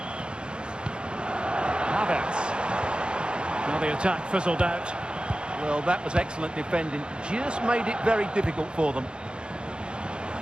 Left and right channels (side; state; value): left; late; 0.052 ms